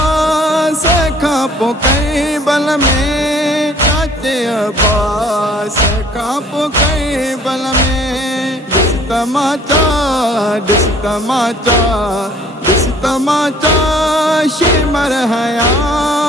खां पोइ कैबल में, चाचे अब्बास खां पोइ कैबल में, ॾिस तमाचा ॾिस तमाचा ॾिस तमाचा शिमर हया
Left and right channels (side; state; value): both; normal; correlation 0.55